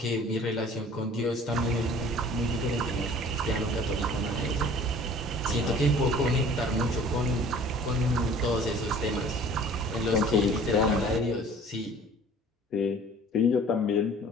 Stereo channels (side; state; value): both; normal; correlation 0.49